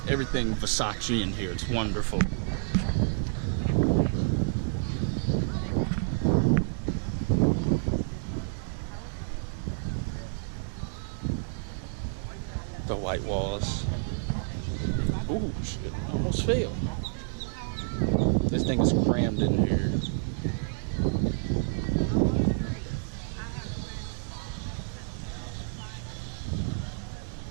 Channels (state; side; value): silent; left; digital silence